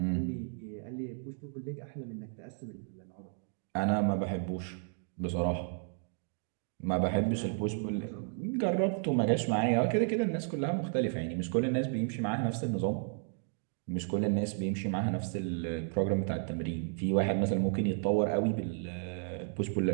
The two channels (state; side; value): silent; left; 56 dB below the other